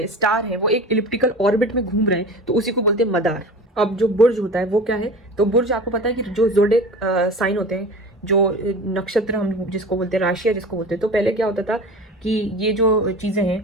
स्टार है, वो एक इलिप्टिकल ऑर्बिट में घूम रहे हैं, तो उसी को बोलते हैं मदार। अब जो बुर्ज होता है वो क्या है, तो बुर्ज आपको पता है कि जो ज़ोडिएक साइन होते हैं, जो नक्षत्र हम जिसको बोलते हैं, राशियाँ जिसको बोलते हैं, तो पहले क्या होता था कि ये जो चीज़ें हैं,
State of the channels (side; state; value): both; normal; correlation 0.35